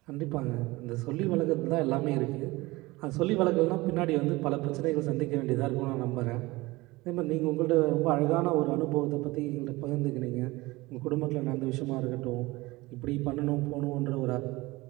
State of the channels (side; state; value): left; quieter; 21.3 dB